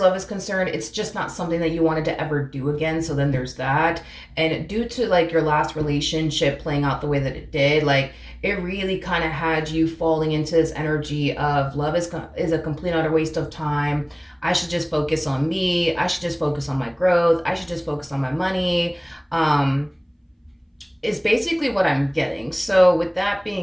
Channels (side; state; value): both; identical; correlation 1.00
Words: is concerned, it's just not something that you wanted to ever do again. So then there's that. And due to like your last relationship playing out the way that it did, like it really kind of had you falling into this energy of love is a complete utter waste of time. I should just focus on me. I should just focus on my growth. I should just focus on my money. Is basically what I'm getting. So with that